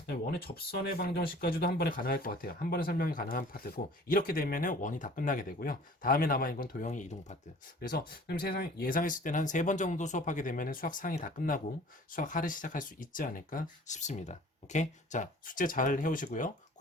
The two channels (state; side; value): normal; both; correlation 0.48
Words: 원의 접선의 방정식까지도 한 번에 가능할 것 같아요. 한 번에 설명이 가능한 파트고 이렇게 되면 원이 다 끝나게 되고요. 다음에 남아있는 건 도형의 이동 파트. 그래서 예상했을 때는 한 3번 정도 수업하게 되면 수학 상이 다 끝나고 수학 하를 시작할 수 있지 않을까 싶습니다. 오케이? 자, 숙제 잘 해오시고요.